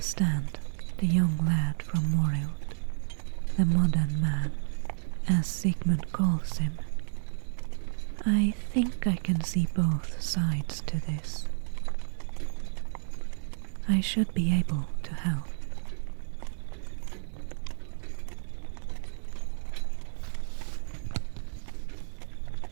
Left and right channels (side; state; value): left; silent; digital silence